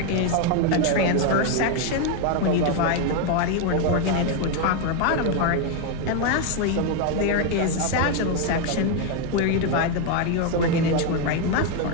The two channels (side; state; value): both; different; correlation 0.02